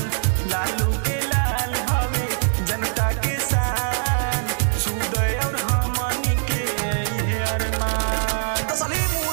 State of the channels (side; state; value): left; silent; digital silence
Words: लालू के लाल हवे जनता के शान सुदय और हमनी के ये अरमान। तो